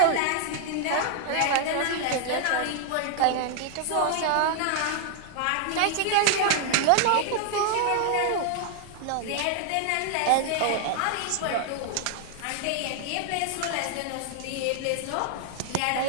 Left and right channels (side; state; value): both; different; correlation 0.00